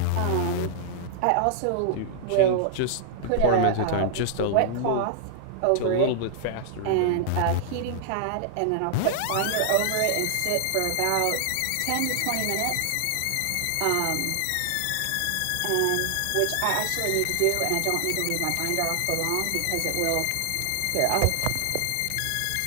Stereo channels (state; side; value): different; both; correlation -0.01